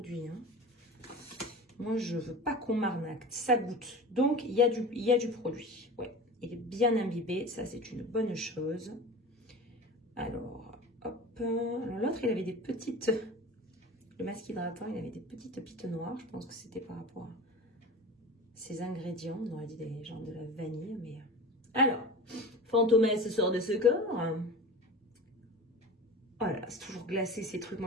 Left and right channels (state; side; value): normal; both; correlation 0.34